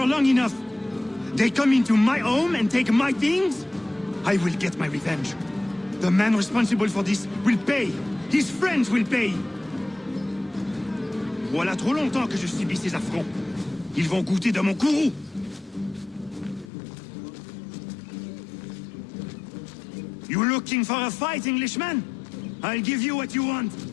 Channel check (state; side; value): drops out; right; at 16.7 s